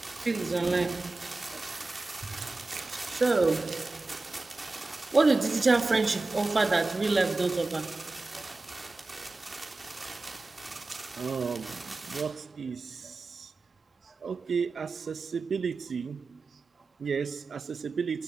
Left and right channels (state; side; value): quieter; left; 3.4 dB